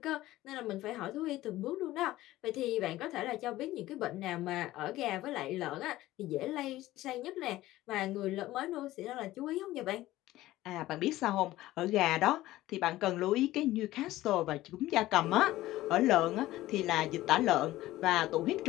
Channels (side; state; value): right; quieter; 16.2 dB